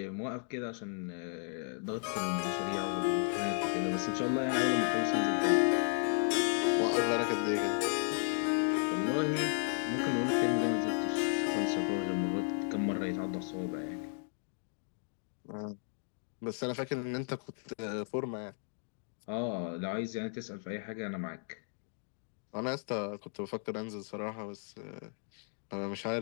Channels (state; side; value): silent; right; 55 dB below the other